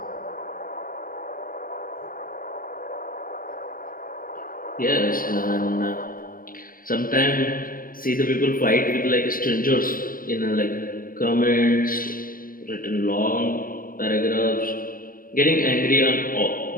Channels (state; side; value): late; right; 0.41 ms